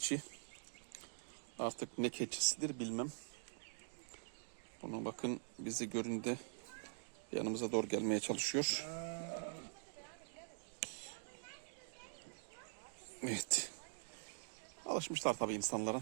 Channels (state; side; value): silent; left; digital silence